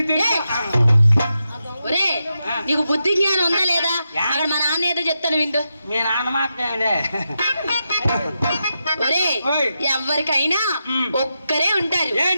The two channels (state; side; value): inverted; both; correlation -0.87